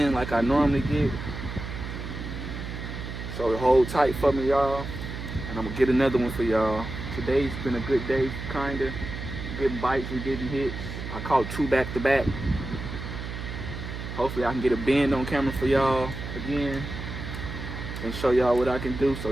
like I normally get. So hold tight for me, y'all. And I'm gonna get another one for y'all. Today's been a good day, kinda. Getting bites and getting hits. I caught 2 back to back. Hopefully I can get a bend on camera for y'all again and show y'all what I can do.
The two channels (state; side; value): noise; right; hum, 7 dB below the sound